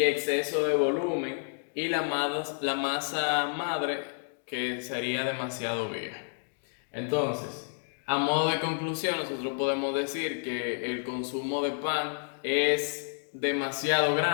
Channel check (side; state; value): right; silent; digital silence